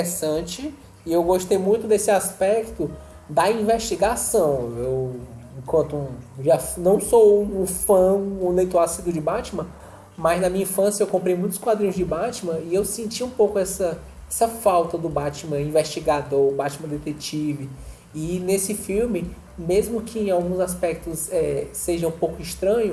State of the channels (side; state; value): both; identical; correlation 1.00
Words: e eu gostei muito desse aspecto da investigação. Eu, já não sou um fã, um leitor assíduo de Batman, mas na minha infância eu comprei muitos quadrinhos de Batman e eu senti um pouco essa falta do Batman investigador, o Batman detetive. E nesse filme, mesmo que em alguns aspectos seja um pouco